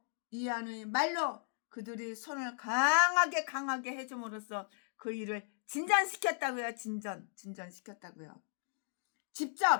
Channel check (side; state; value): right; silent; digital silence